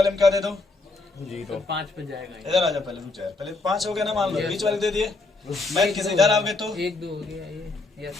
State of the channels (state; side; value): quieter; right; 3.4 dB